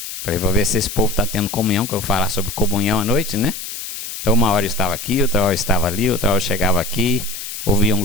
Para ver se esse povo está tendo comunhão, que eu vou falar sobre comunhão à noite, né? Então uma hora eu estava aqui, outra hora eu estava ali, outra hora eu chegava aqui, ouvia um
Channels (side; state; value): left; noise; hiss, 8 dB below the sound